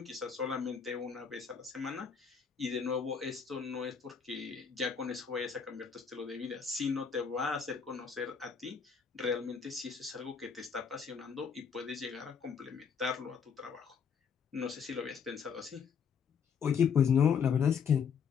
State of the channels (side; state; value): right; quieter; 6.6 dB